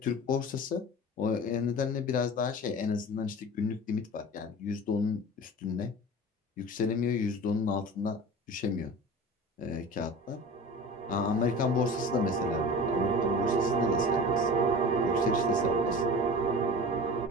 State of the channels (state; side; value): normal; both; correlation 0.35